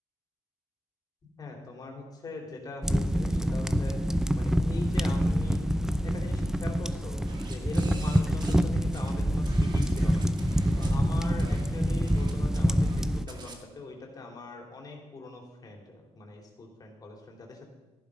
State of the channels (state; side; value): normal; both; correlation 0.94